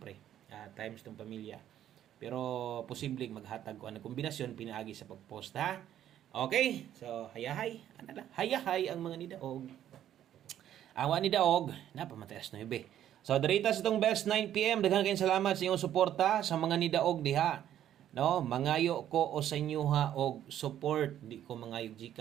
times tong pamilya pero posibleng maghatag ko ang kombinasyon pinaagi sa pagpost ha. Okay, so hayahay ana la hayahay ang mga nidaog. Awa ni daog na pamataas 9. So diritas itong best 9 PM daghan kayong salamat sa inyong suporta sa mga nidaog diha, no? Mangayo ko o sa inyo ha og support, di ko mangayo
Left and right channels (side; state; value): left; quieter; 11.2 dB